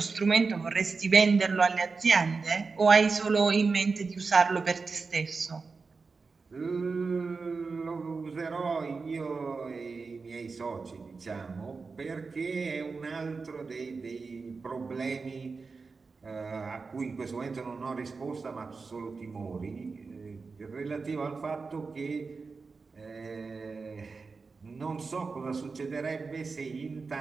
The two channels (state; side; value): quieter; left; 4.5 dB